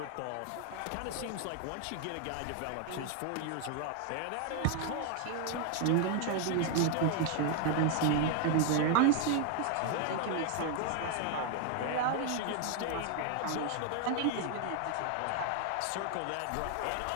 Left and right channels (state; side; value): different; both; correlation 0.00